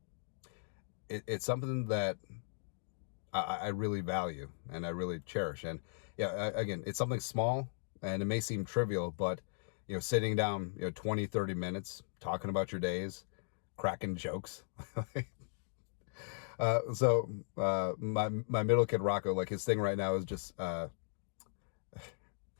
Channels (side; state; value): right; silent; digital silence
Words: it's something that I really value and I really cherish. And yeah, again, it's something small, and it may seem trivial, but sitting down 20, 30 minutes talking about your days, cracking jokes, My middle kid Rocco, like his thing right now is just